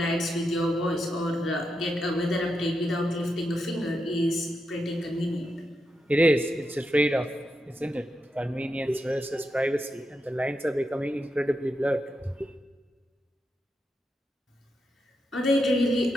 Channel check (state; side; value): normal; both; correlation 0.85